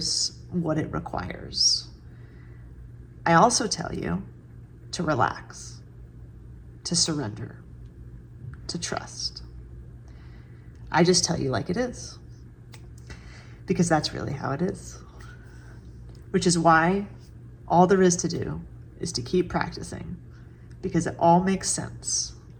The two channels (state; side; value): identical; both; correlation 1.00